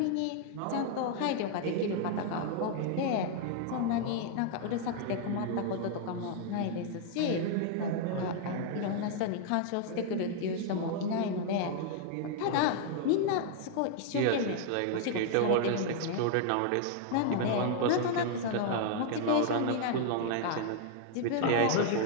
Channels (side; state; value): both; different; correlation 0.00